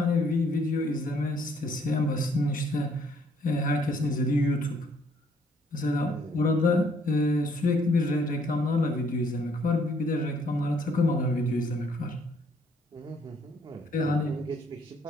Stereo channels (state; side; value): normal; both; correlation 0.66